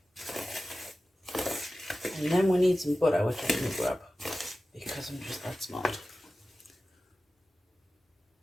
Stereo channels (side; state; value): both; normal; correlation 0.95